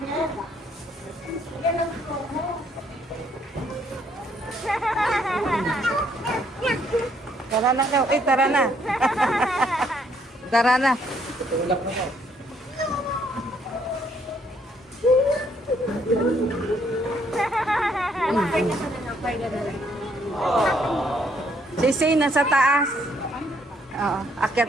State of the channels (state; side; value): normal; both; correlation 0.69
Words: Tara na kayo. Tara na. Tara na. Tutulak na mo. Sisi, nasa taas. Oo, akyat